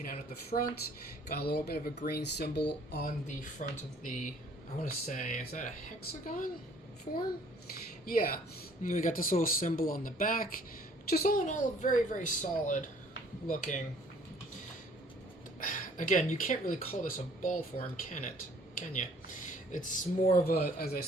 out at the front. Got a little bit of a green symbol on the front of the, I want to say, is that a hexagon form? Yeah. And we got this little symbol on the back. Just all in all, very, very solid looking. Again, you can't really call this a ball form, can it? Can you? It's more of a, as I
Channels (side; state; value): both; normal; correlation 0.57